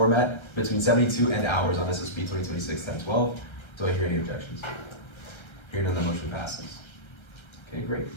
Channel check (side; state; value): right; late; 1.3 ms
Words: between 72 and hours on SSB 2026-1012. Do I hear any objections? Hearing none, the motion passes. Okay,